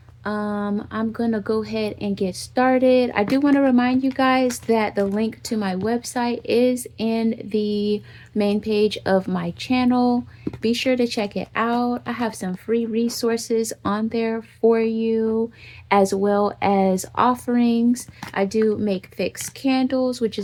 I'm gonna go ahead and get started. I do want to remind you guys that the link to my website is in the main page of my channel. Be sure to check it out. I have some free resources on there for you, as well as offerings. I do make fixed candles, which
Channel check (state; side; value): identical; both; correlation 1.00